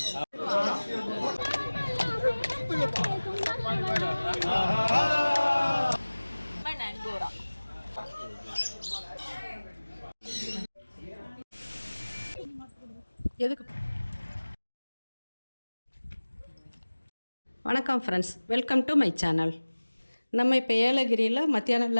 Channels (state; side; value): inverted; both; correlation -1.00